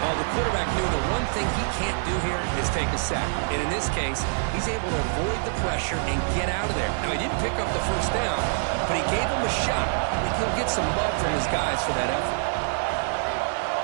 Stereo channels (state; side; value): silent; left; digital silence